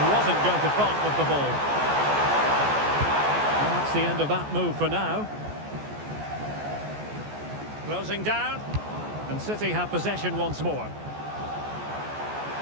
going to part with the ball. And that's the end of that move for now. Closing down, and City have possession once more.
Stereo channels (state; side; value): late; left; 14 ms